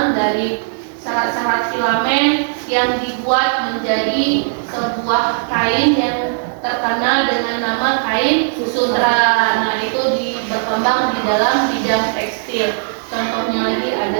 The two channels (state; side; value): silent; left; digital silence